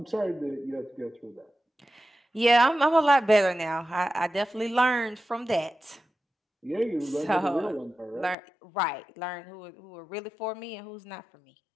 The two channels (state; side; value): drops out; right; at 8.3 s